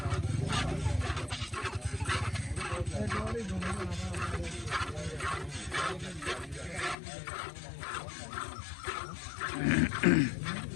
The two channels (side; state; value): right; drops out; at 7.0 s